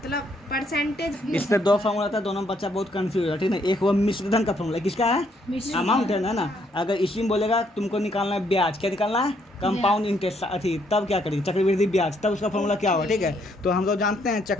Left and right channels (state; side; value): normal; both; correlation 0.71